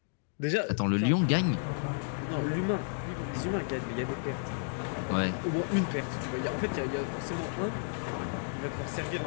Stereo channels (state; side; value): silent; right; digital silence